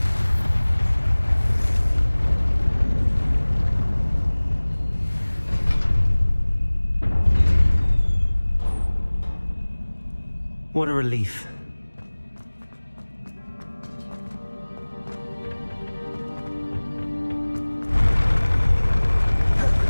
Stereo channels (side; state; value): both; inverted; correlation -1.00